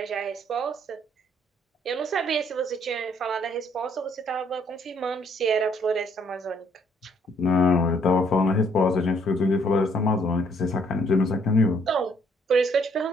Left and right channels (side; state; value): both; normal; correlation 0.65